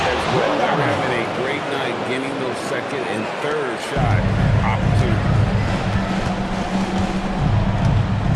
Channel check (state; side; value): identical; both; correlation 1.00